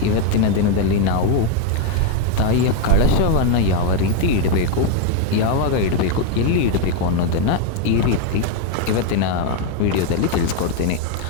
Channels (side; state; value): both; different; correlation 0.02